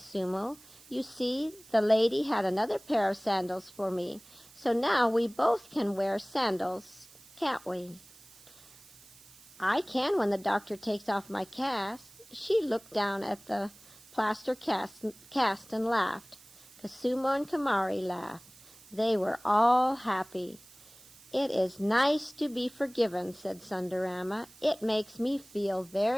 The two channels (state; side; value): noise; right; hiss, 23 dB below the sound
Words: "You see, the lady had another pair of sandals for me, so now we both can wear sandals, can't we?" "I can when the doctor takes off my cast." She looked down at the plaster cast and laughed. Koosumo and Kamari laughed. They were all happy. "It is nice to be forgiven," said Sundarama. "It makes me feel